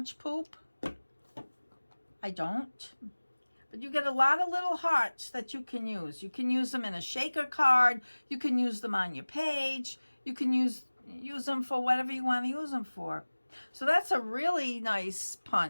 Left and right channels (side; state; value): both; inverted; correlation -1.00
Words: poop. I don't. But you get a lot of little hearts that you can use. You can use them in a shaker card. You can use them on your page. You can use them for whatever you want to use them for. So that's a really nice